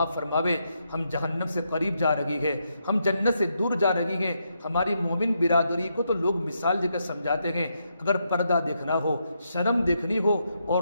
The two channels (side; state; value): both; inverted; correlation -0.80